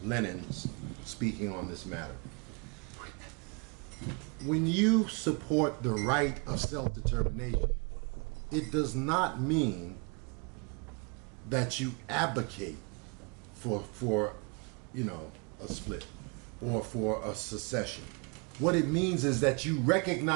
Lenin speaking on this matter. When you support the right of self-determination, it does not mean that you advocate for a split or for a secession. What it means is that you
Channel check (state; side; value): quieter; left; 33.3 dB